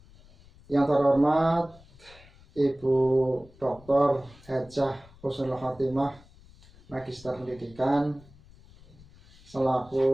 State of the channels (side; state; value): left; noise; rumble, 24 dB below the sound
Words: Yang terhormat Ibu Dr. Hajah Husnul Khotimah, Magister Pendidikan,